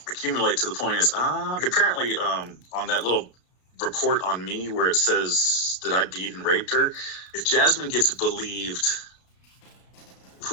accumulate to the point is, apparently on that little report on me where it says that I beat and raped her, if Jasmine gets believed,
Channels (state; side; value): late; right; 33 ms